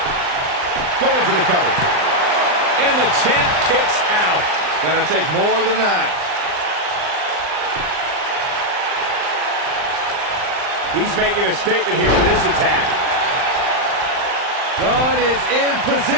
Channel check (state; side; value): late; left; 39 ms